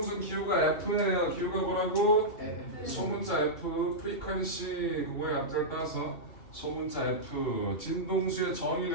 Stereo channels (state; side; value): late; right; 2.7 ms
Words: Q가 F예요. Q가 뭐라고? 소문자 F, 프리퀀시 그거의 앞자를 따서 소문자 F. 진동수의